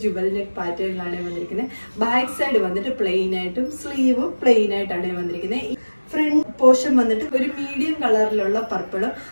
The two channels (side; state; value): both; inverted; correlation -1.00